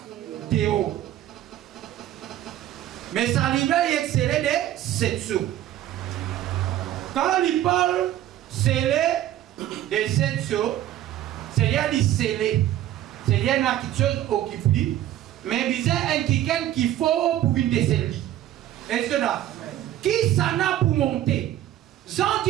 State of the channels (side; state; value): left; quieter; 12.8 dB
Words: théo. Mais ça livre est excellé de 7 sceaux. Quand il parle scellé de 7 sceaux, c'est-à-dire il scellé. C'est-à-dire quelque chose occupé. Mais il y a un quelqu'un qu'il faut pour une décennie. Est-ce que là? Qui s'en a pour monter? J'en